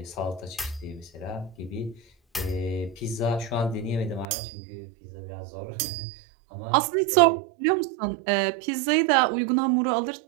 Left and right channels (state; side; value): drops out; left; at 4.2 s